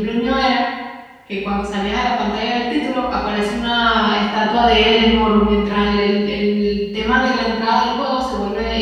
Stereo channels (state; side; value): identical; both; correlation 1.00